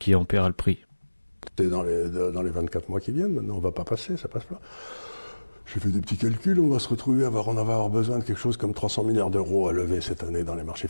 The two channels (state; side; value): inverted; both; correlation -1.00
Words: en paiera le prix. C'est dans les 24 mois qui viennent, maintenant on ne va pas passer, ça passe pas. J'ai fait des petits calculs, on va se retrouver à avoir besoin de quelque chose comme 300 milliards d'euros à lever cette année dans les marchés